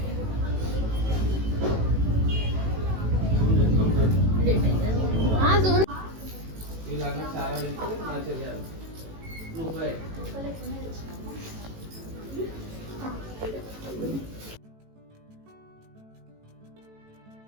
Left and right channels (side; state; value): left; late; 18 ms